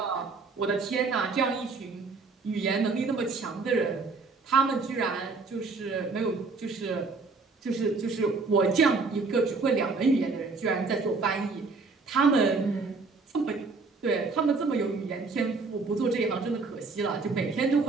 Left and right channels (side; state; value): left; quieter; 4.1 dB